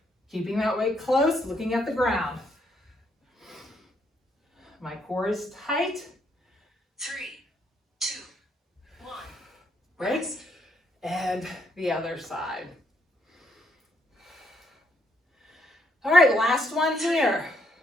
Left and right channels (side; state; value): both; normal; correlation 0.73